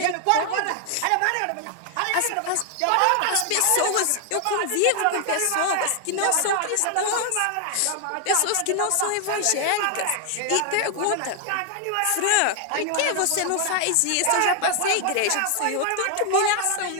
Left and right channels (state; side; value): different; both; correlation 0.00